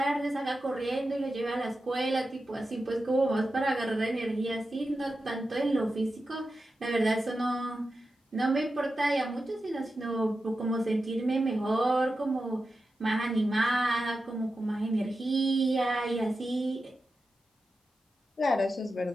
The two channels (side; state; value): both; normal; correlation 0.91